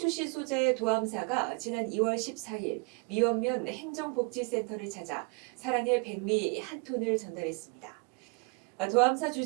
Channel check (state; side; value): quieter; left; 31.9 dB